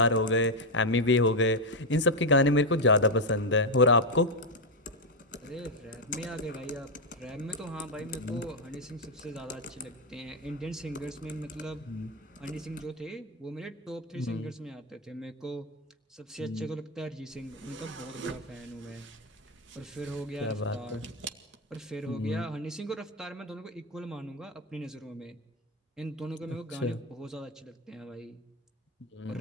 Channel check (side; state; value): both; normal; correlation 0.04